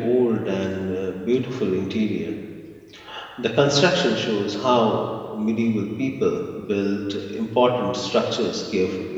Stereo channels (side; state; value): both; identical; correlation 1.00